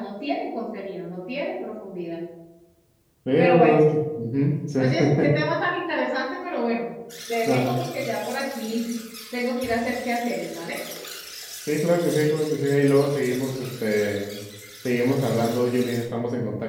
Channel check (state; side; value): identical; both; correlation 1.00